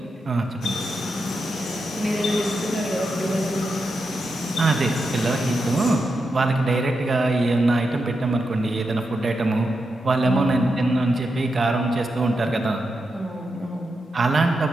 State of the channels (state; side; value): normal; both; correlation 0.87